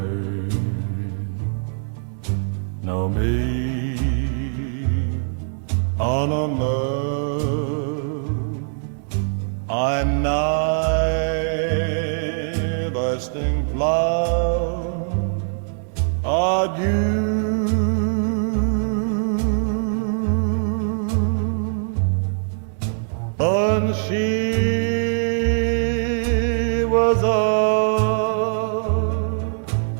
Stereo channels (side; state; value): left; silent; digital silence